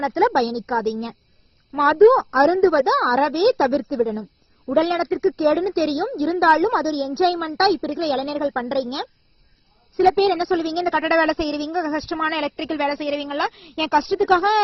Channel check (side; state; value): both; identical; correlation 1.00